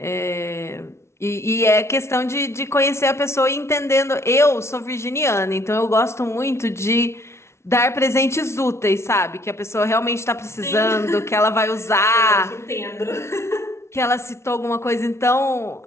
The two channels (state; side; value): late; right; 0.13 ms